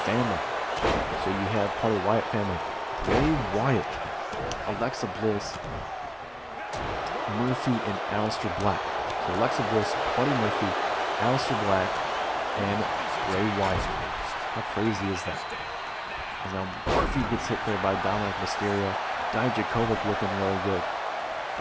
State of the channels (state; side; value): identical; both; correlation 1.00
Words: family. So you have part of the Wyatt family: Bray Wyatt, Alexa Bliss, Murphy, and Aleister Black. So Alexa Bliss, Buddy Murphy, Aleister Black, and Bray Wyatt. How crazy is that? And now Murphy gets hit there by Dominic Mysterio. Dijakovic looking really good.